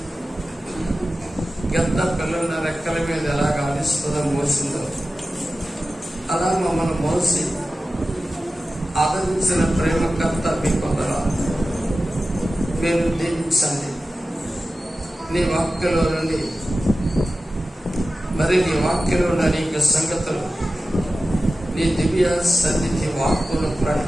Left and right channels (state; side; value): normal; both; correlation 0.95